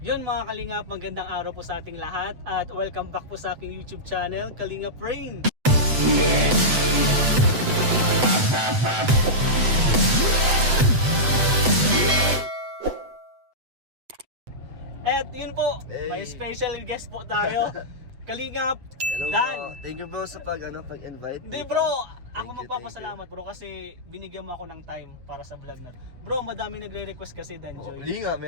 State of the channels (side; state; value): left; late; 7.9 ms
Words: mga Kalingap, magandang araw po sa ating lahat at welcome back po sa aking YouTube channel, Kalingap Rain. At yun po, may special guest po tayo, Kalingap Hello Dan. bro. Thank you bro sa pag-invite. Hindi dito. bro, ako Thank you, magpapasalamat bro kasi binigyan mo ako ng time para sa vlog na. Bro, madami nagre-request kasi Danjoy. Hindi nga,